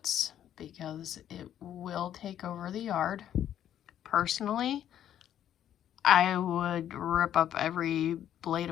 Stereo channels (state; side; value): quieter; right; 10.6 dB